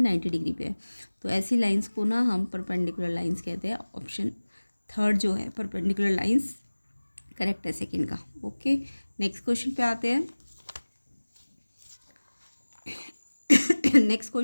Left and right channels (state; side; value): inverted; both; correlation -1.00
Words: 90 डिग्री पे है। तो ऐसी लाइन्स को ना हम परपेंडिकुलर लाइन्स कहते हैं। ऑप्शन थर्ड जो है परपेंडिकुलर लाइन्स करेक्ट है सेकेंड का। ओके, नेक्स्ट क्वेश्चन पे आते हैं। नेक्स्ट